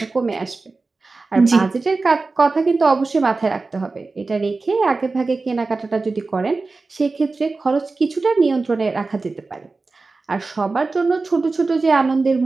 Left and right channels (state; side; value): quieter; left; 3.8 dB